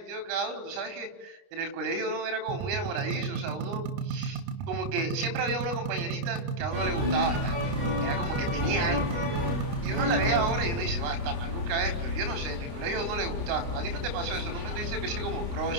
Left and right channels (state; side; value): late; left; 29 ms